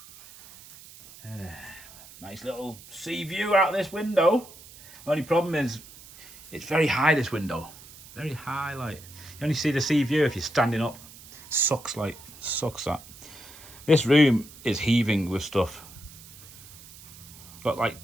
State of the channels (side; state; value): right; noise; hiss, 19 dB below the sound